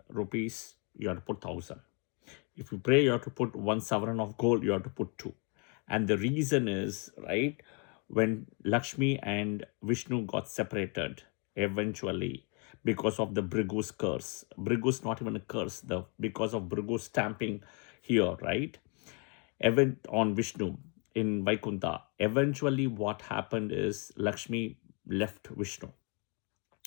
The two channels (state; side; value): quieter; right; 35.4 dB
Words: rupees, you have to put 1,000. If you pray you have to put 1 sovereign of gold, you have to put 2. And the reason is, right, when Lakshmi and Vishnu got separated eventually because of the Bhrigu's curse. Bhrigu's not even a curse, because of Bhrigu's stamping here, right? Event on Vishnu in Vaikuntha. Eventually what happened is Lakshmi left Vishnu